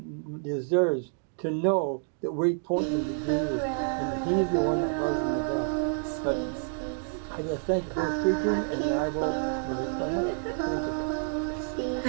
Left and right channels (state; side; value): silent; left; 59 dB below the other